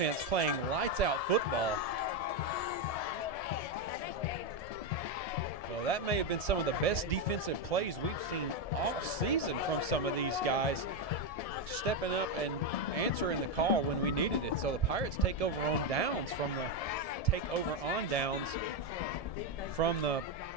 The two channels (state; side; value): late; right; 1.7 ms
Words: playing lights-out football. Well, that may have been some of the best defensive plays we've seen all season from some of these guys, stepping up and answering the call when we needed it. So the Pirates take over on downs from the